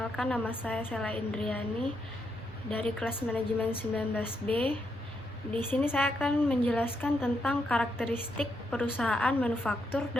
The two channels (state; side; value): normal; both; correlation 0.80